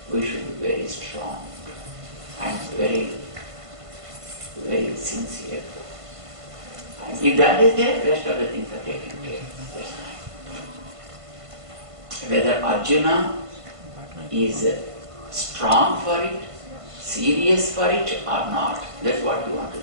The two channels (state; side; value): late; left; 1.5 ms